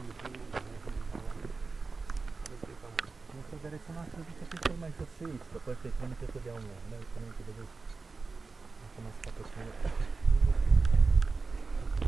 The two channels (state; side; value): quieter; left; 4.1 dB